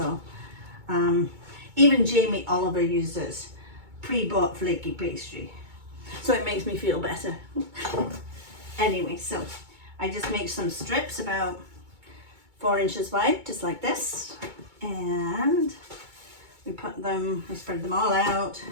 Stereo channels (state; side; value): late; left; 2.2 ms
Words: even Jamie Oliver uses pre-bought flaky pastry, so it makes me feel better. Anyway, so I just make some strips about 4 inches wide, just like this, and we spread them all out,